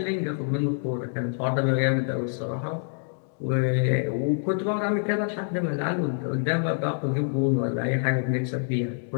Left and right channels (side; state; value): right; silent; digital silence